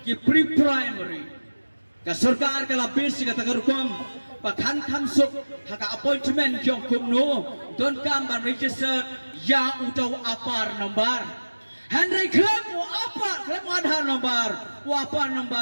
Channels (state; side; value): inverted; both; correlation -1.00